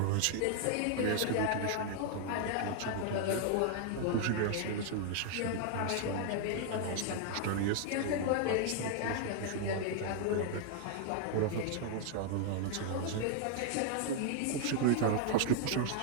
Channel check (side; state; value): both; different; correlation 0.00